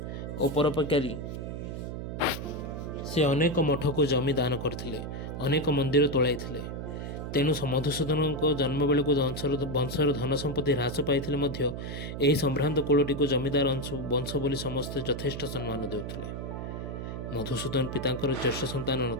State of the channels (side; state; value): right; noise; hum, 6 dB below the sound